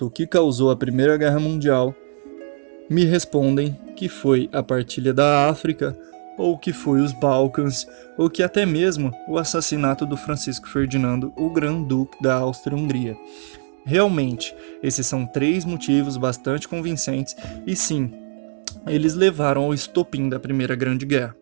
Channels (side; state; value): left; silent; 65 dB below the other